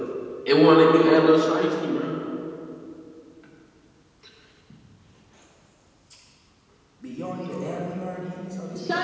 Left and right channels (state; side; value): identical; both; correlation 1.00